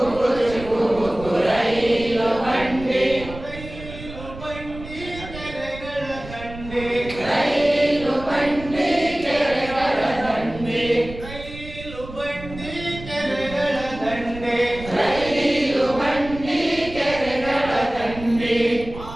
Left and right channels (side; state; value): right; noise; rumble, 13 dB below the sound